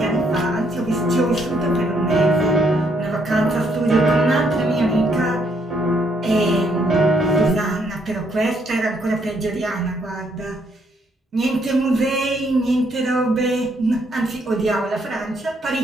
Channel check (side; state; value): both; normal; correlation 0.72